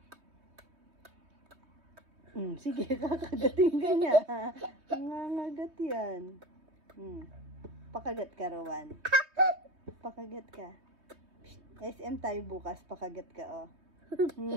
Sige, kakagating ka niya. Nangangagat yan. Pakagat ka, Rowan. Pakagat ka. SM tayo bukas, pakagat ka, oh.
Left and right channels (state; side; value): late; left; 3.2 ms